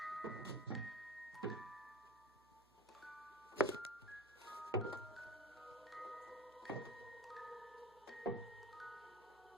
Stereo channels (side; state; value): right; noise; hum, 29 dB below the sound